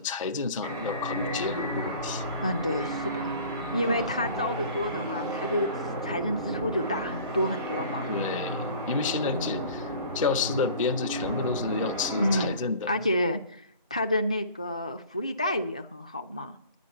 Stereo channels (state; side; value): inverted; both; correlation -0.46